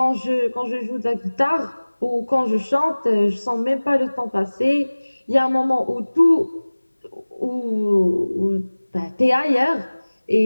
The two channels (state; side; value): inverted; both; correlation -1.00